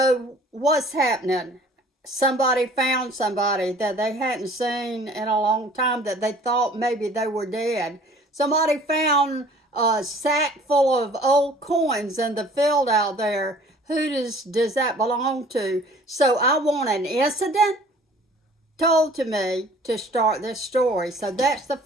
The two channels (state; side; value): normal; both; correlation 0.52